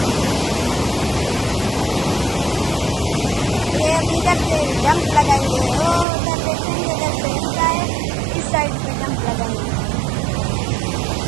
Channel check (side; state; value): left; drops out; at 6.1 s